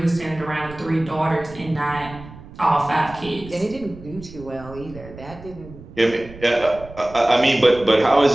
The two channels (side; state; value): right; noise; rumble, 17 dB below the sound